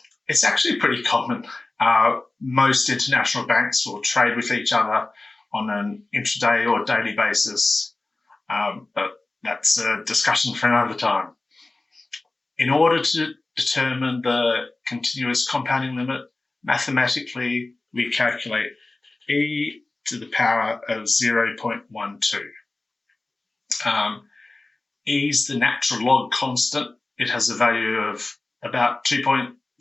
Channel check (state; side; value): quieter; right; 3.0 dB